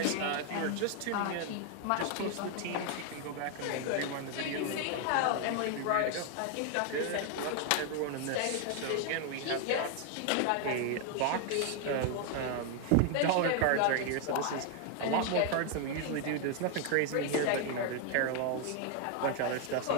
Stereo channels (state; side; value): different; both; correlation 0.00